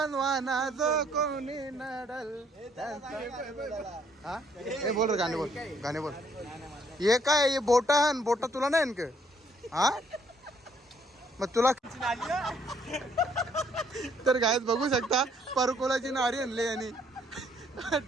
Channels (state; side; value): normal; both; correlation 0.67